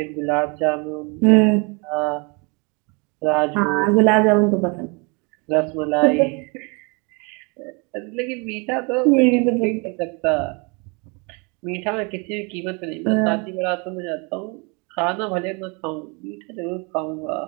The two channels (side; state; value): left; quieter; 31.4 dB